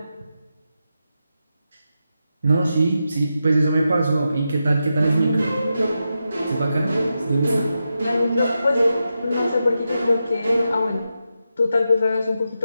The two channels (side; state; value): both; inverted; correlation -0.88